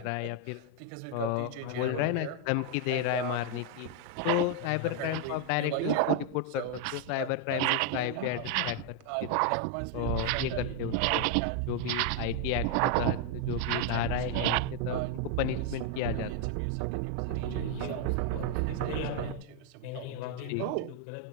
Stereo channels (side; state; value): both; different; correlation 0.00